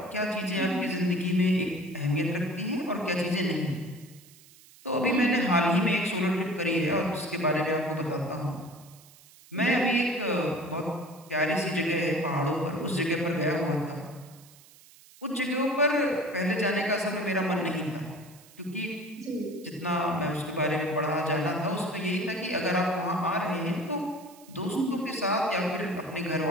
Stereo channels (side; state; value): right; noise; hiss, 24 dB below the sound